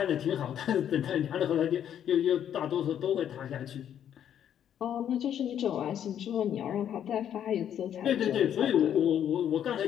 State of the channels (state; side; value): quieter; right; 9.7 dB